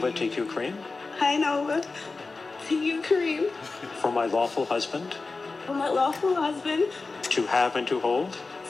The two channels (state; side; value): quieter; right; 3.9 dB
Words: take you, Kareem, Hi, Nova. To you, Kareem. for my lawful husband, For my lawful husband, to have and to hold,